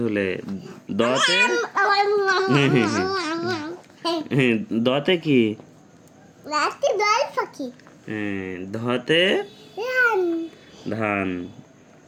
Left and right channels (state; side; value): identical; both; correlation 1.00